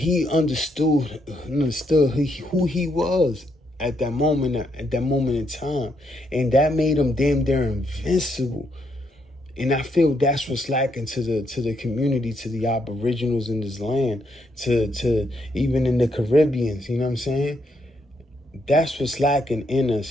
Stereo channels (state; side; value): normal; both; correlation 0.76